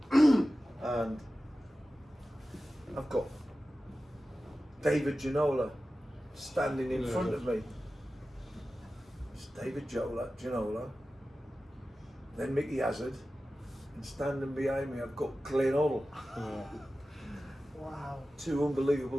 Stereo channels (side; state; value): both; normal; correlation 0.95